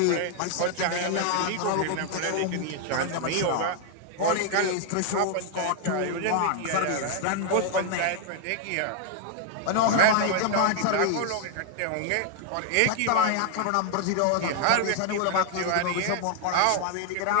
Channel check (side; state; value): both; different; correlation 0.00